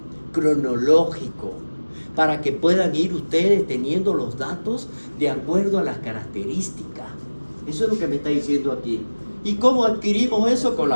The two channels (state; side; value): inverted; both; correlation -1.00